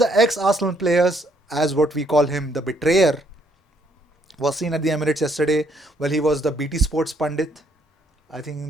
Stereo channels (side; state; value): both; normal; correlation 0.69